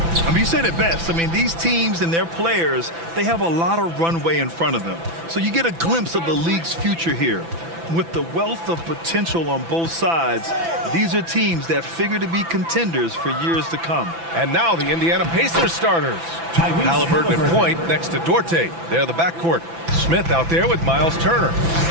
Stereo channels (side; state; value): left; late; 6.0 ms